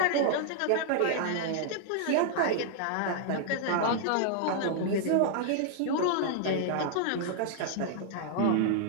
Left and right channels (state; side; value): different; both; correlation -0.01